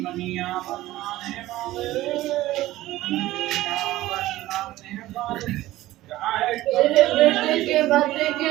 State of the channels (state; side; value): quieter; left; 16.2 dB